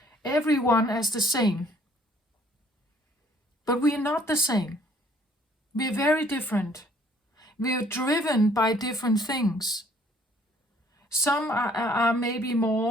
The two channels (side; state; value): both; normal; correlation 0.60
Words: everyone as the same. But we are not the same. We are very different. We are driven by different things. Some are maybe